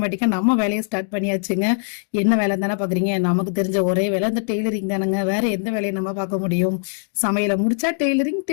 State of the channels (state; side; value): silent; right; 65 dB below the other